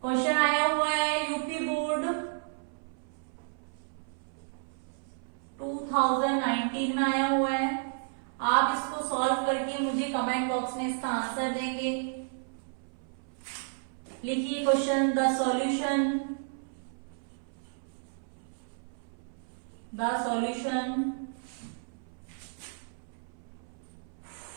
क्वेश्चन आया हुआ है, यूपी बोर्ड 2019 में आया हुआ है। आप इसको सॉल्व करके मुझे कमेंट बॉक्स में इसका आंसर देंगे। लिखिए question, the solution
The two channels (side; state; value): left; silent; 57 dB below the other